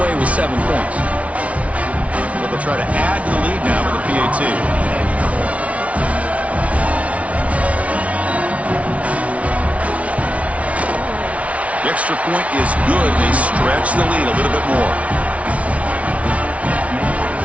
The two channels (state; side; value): late; left; 0.065 ms